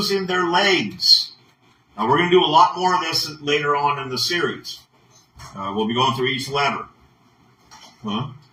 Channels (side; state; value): both; identical; correlation 1.00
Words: their legs. Now, we're going to do a lot more of this later on in the series. We'll be going through each letter. Huh?